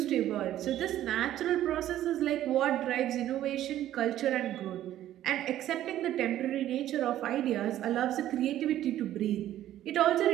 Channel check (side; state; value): left; quieter; 12.7 dB